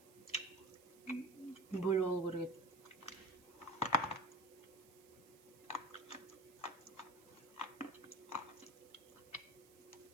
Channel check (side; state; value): right; noise; hiss, 24 dB below the sound